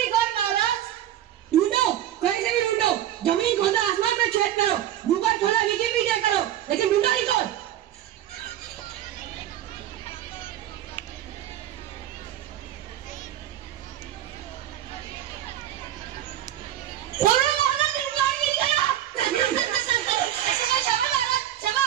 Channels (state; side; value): quieter; left; 12.0 dB